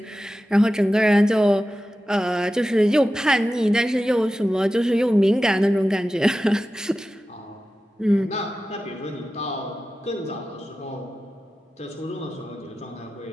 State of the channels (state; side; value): normal; both; correlation 0.93